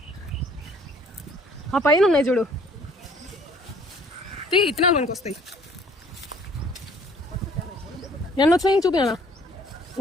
ఆ పైన ఉన్నాయి చూడు, ఇత్తనాలు మనకు వస్తాయి. ఎన్ని వచ్చినాయి చూపినా?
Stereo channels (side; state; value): both; normal; correlation 0.58